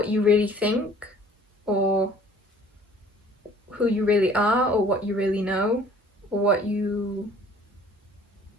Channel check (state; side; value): normal; both; correlation 0.53